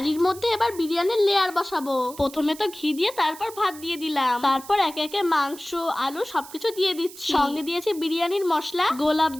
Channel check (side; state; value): right; noise; hiss, 17 dB below the sound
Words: মধ্যে এবার বিরিয়ানির লেয়ার বসাবো। প্রথমে তো ঘি দিয়ে তারপর ভাত দিয়ে দিলাম। তারপর একে একে মাংস আলু সবকিছু দিয়ে দিচ্ছি। সঙ্গে দিয়েছি বিরিয়ানির মশলা, গোলাপ